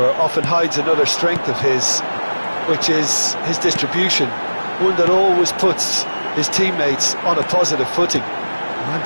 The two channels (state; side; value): inverted; both; correlation -1.00